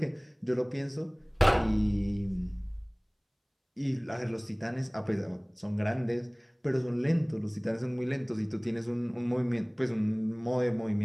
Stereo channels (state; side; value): identical; both; correlation 1.00